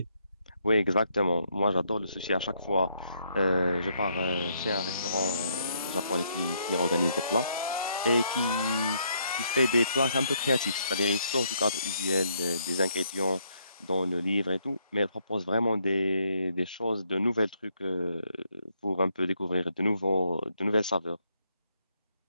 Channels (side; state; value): both; inverted; correlation -0.73